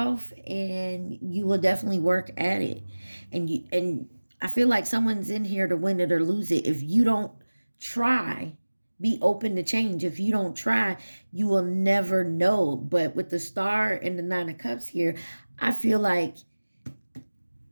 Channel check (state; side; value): inverted; both; correlation -1.00